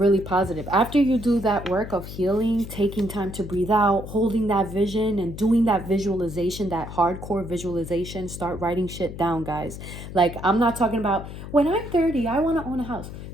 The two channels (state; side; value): noise; left; hum, 11 dB below the sound